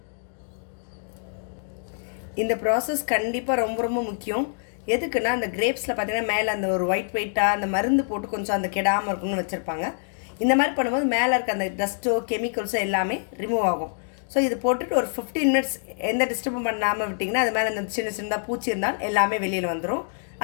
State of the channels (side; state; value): right; silent; digital silence